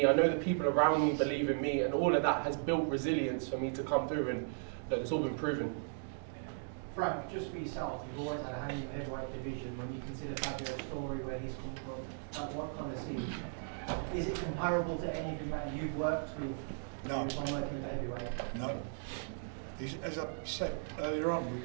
I know the people around me believe in me, and all of that has built resilience for me to come through, and look, it's all been proven. Frank, just for yourself, you've always had a hand in the heavyweight division. When you consider Fabio's story, where he's come from, what kind of scene? Is it comparable to any of the you've worked with? No. On working with heavyweight? No. As I said earlier on,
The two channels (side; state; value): left; silent; digital silence